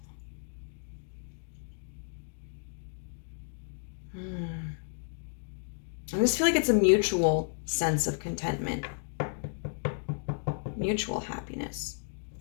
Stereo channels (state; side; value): silent; right; digital silence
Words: I just feel like it's a mutual sense of contentment, mutual happiness.